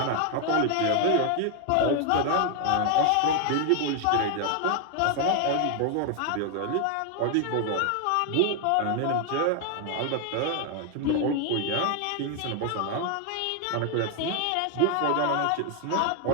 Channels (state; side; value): different; both; correlation 0.01